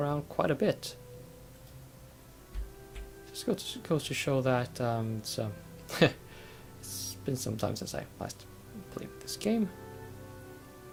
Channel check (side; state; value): both; identical; correlation 1.00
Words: quite a bit. Just goes to show that it's been some time since I last played this game.